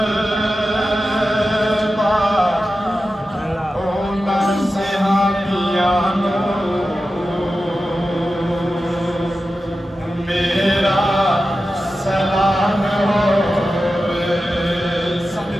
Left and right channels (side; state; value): both; normal; correlation 0.92